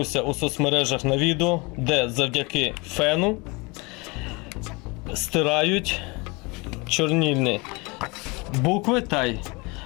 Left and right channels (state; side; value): quieter; right; 27.1 dB